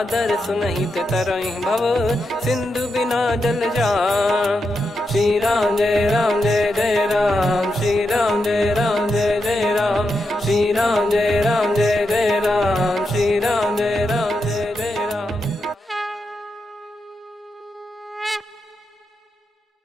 सुनहित तरहि भव, सिंधु बिना जल जान। श्री राम जय जय राम, श्री राम जय जय राम, श्री राम जय जय राम, श्री राम जय जय राम।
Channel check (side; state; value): both; normal; correlation 0.86